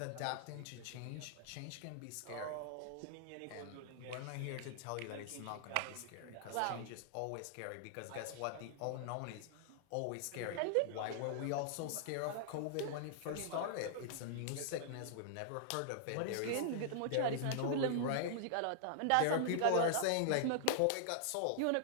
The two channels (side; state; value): both; different; correlation -0.01